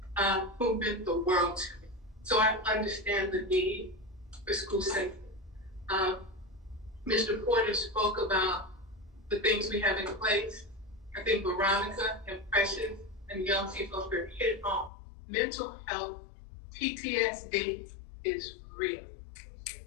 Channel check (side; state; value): right; drops out; at 14.9 s